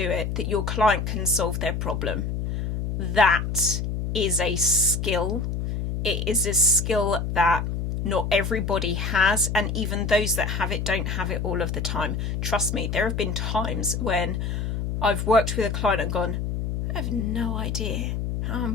it, that your client can solve their problem. That is a skill. It is a skill that not everybody has, and even those that have it don't have it all of the time. Trust me, there have been times when I've worked with a client and gone, I have no idea how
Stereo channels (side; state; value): left; noise; hum, 2 dB below the sound